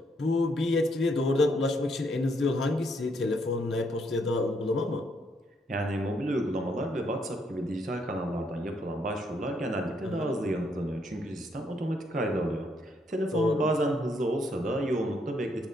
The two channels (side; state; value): both; normal; correlation 0.73